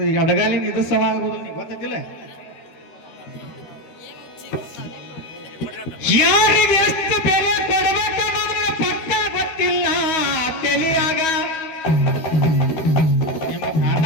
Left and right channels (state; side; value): late; right; 13 ms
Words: ಅಡಗಾಲಿನ ಇದು ಸಮ ಆಗೋದು ನೀ ಗೊತ್ತಿಲ್ಲ. ಯಾರಿಗೆ ಎಷ್ಟು ಬೆಲೆ ಕೊಡಬೇಕು ಅನ್ನೋದ್ರ ಪಕ್ಕ ಗೊತ್ತಿಲ್ಲ ತಿಳಿಯಾಗ. ನಿಮ್ಮ